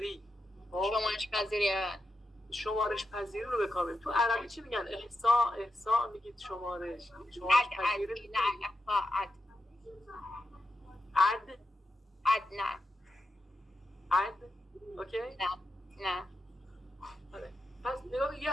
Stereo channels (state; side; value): normal; both; correlation 0.87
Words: رو به کار میبریم. تو عربی چی میگن؟ احصاء میگید شمارش پذیری. نه عد اوکی؟ نه. پس نگاه، یه